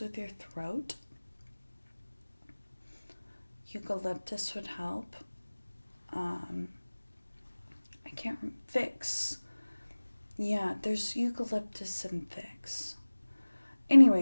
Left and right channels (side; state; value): both; inverted; correlation -1.00